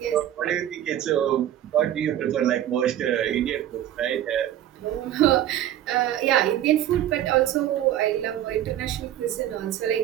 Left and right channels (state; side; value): quieter; left; 11.9 dB